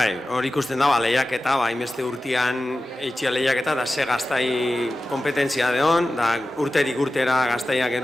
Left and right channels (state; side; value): normal; both; correlation 0.94